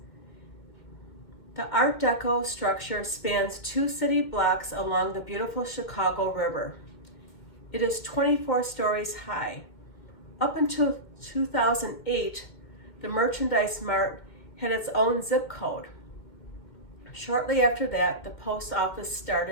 The Art Deco structure spans 2 city blocks along the beautiful Chicago River. It is 24 stories high. Up until 2008, the Merchandise Mart had its own zip code. Shortly after that, the post office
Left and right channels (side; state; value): right; late; 2.2 ms